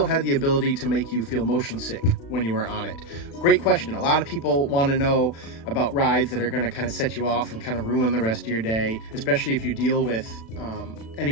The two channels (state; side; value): late; right; 36 ms